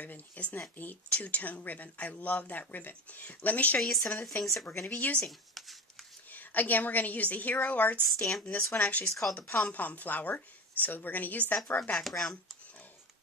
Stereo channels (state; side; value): normal; both; correlation 0.26